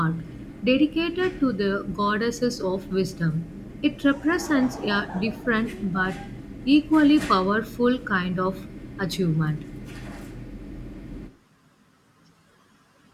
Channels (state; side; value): identical; both; correlation 1.00